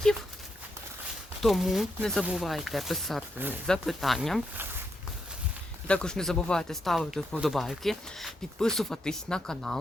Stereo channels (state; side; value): normal; both; correlation 0.81